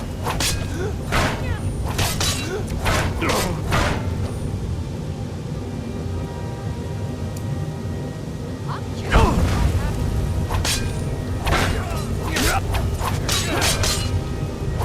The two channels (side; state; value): both; identical; correlation 1.00